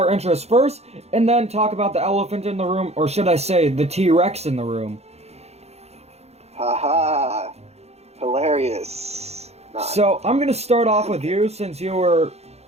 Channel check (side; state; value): left; late; 0.31 ms